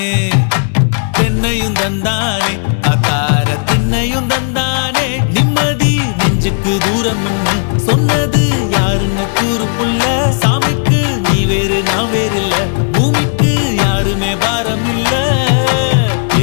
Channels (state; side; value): silent; right; digital silence